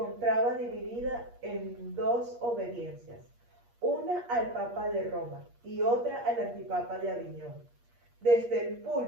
dividida en dos obediencias, una al Papa de Roma y otra al antipapa de Aviñón. Desde el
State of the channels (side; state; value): left; late; 8.5 ms